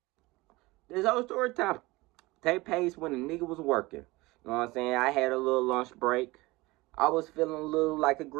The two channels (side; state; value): left; quieter; 21.6 dB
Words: this whole story time take place when a nigga was working. You know what I'm saying? I had a little lunch break. I was feeling a little like a